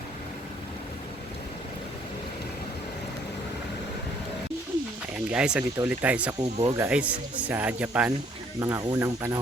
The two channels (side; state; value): both; normal; correlation 0.63